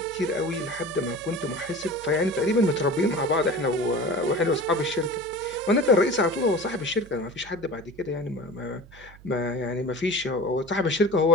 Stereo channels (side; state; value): right; noise; hum, 21 dB below the sound